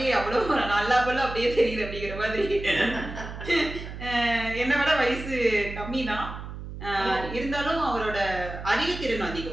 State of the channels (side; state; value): right; noise; hum, 10 dB below the sound